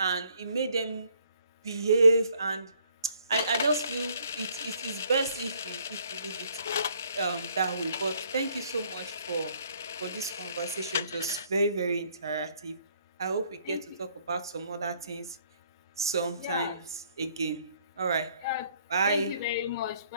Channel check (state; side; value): inverted; both; correlation -0.64